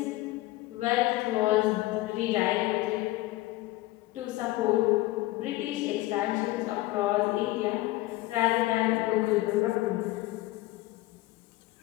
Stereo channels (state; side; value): quieter; right; 18.3 dB